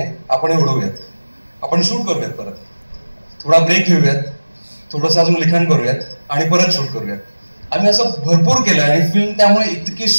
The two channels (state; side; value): inverted; both; correlation -1.00